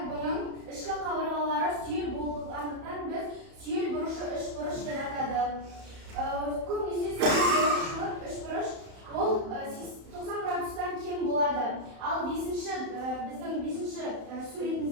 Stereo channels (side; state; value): left; late; 31 ms